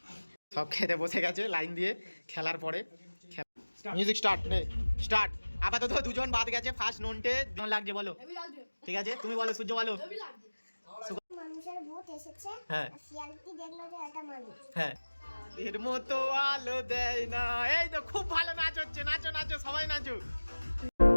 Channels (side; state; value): both; inverted; correlation -1.00